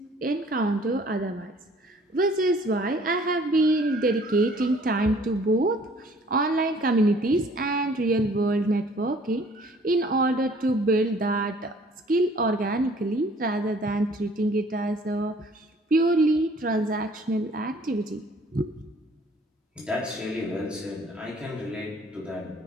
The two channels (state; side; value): normal; both; correlation 0.56